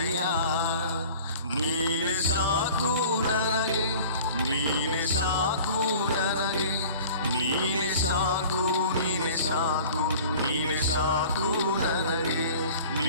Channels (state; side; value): inverted; both; correlation -0.45